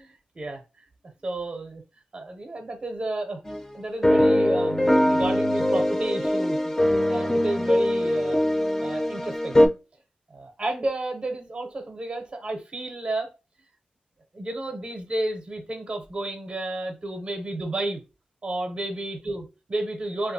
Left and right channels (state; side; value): normal; both; correlation 0.96